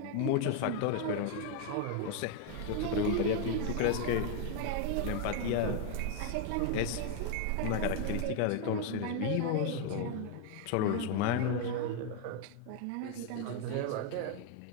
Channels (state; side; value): different; both; correlation 0.01